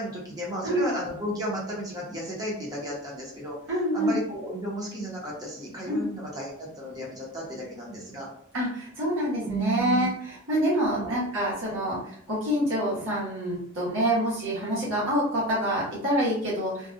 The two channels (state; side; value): normal; both; correlation 0.30